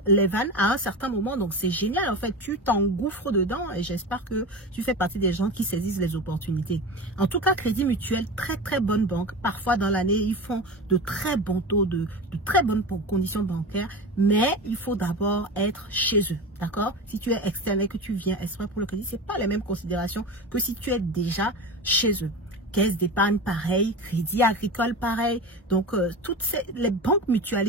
à un certain moment. Donc, c'est génial. En fait, tu t'engouffres dedans et j'espère que tu fais partie des gens qui saisissent les opportunités. En tout cas, Crédit Mutuel, très, très bonne banque. Parfois, dans l'année, ils font de très bons taux, de très bonnes conditions bancaires. Mais il faut d'abord être chez eux. D'accord? Si tu es externe et que tu viens exprès pour le crédit, ce n'est pas les mêmes considérations que si tu es déjà chez eux. Caisse d'épargne pareil, Crédit Agricole pareil. Donc, les banques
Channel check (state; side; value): normal; both; correlation 0.27